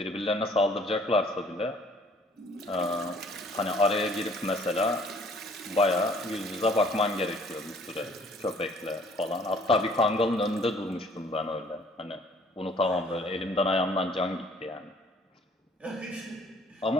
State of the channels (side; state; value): both; normal; correlation 0.57